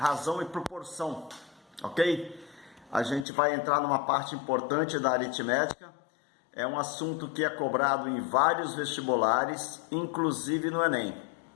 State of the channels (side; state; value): right; drops out; at 3.2 s